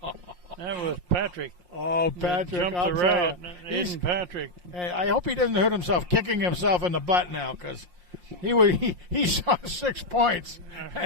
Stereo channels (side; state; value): left; late; 5.6 ms